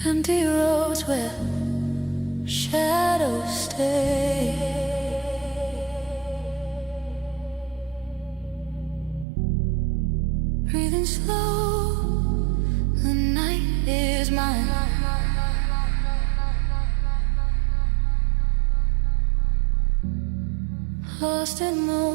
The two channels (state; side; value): drops out; left; at 9.2 s